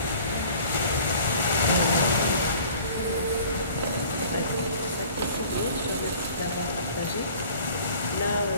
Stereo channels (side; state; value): both; inverted; correlation -0.49